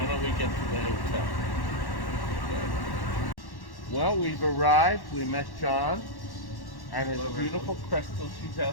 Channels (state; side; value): late; right; 1.1 ms